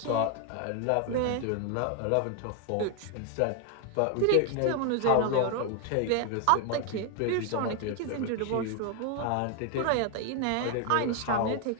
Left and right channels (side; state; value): both; different; correlation 0.00